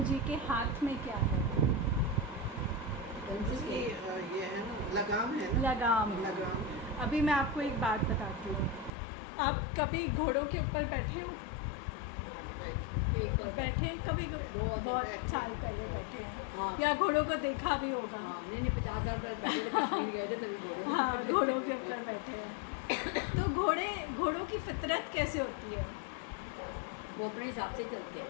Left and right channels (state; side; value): drops out; right; at 8.9 s